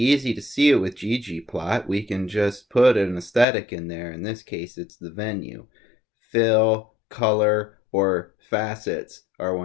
easy to see it with ggplot. We can just put an aesthetic in there. In this case, it's the venue. Fill, color, or facets are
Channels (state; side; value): drops out; right; at 3.5 s